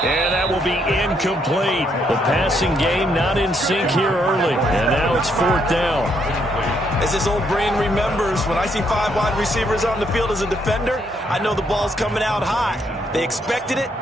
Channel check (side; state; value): both; normal; correlation 0.73